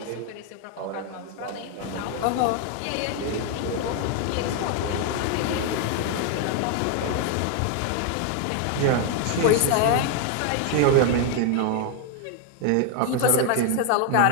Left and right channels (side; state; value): both; different; correlation 0.01